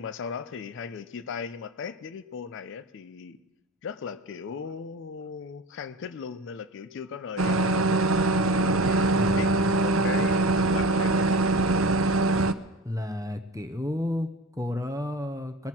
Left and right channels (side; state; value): both; normal; correlation 0.32